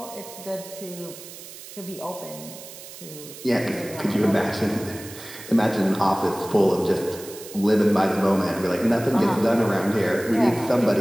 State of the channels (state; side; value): noise; right; hiss, 15 dB below the sound